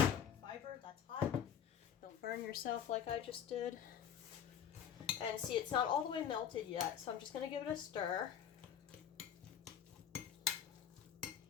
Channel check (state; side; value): quieter; right; 8.9 dB